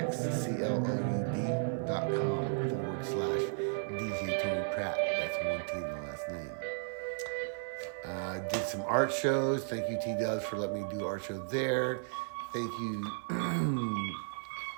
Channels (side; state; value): left; silent; 55 dB below the other